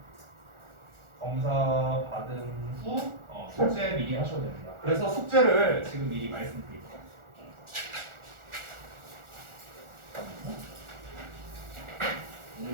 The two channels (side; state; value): left; late; 1.4 ms